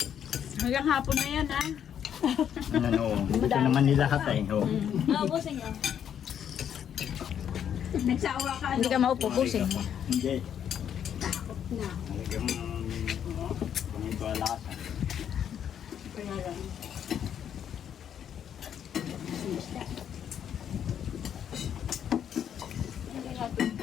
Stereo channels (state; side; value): quieter; right; 9.0 dB